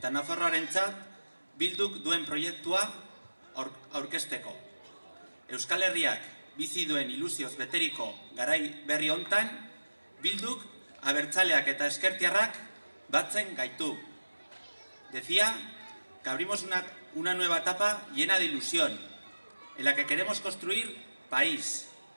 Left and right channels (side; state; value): both; inverted; correlation -1.00